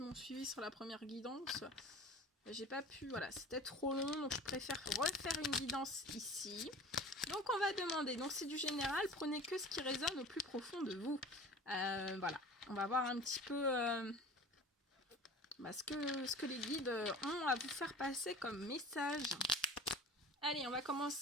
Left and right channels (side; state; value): both; normal; correlation 0.40